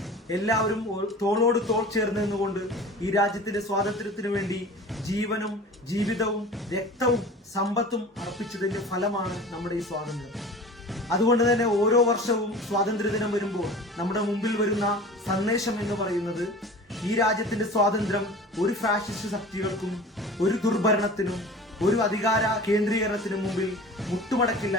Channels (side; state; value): both; normal; correlation 0.39